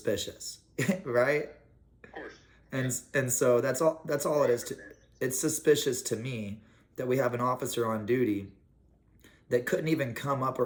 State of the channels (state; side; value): identical; both; correlation 1.00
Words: right? Of course. And so that's all it is. It's suspicious to me that we have an officer on duty that couldn't even come up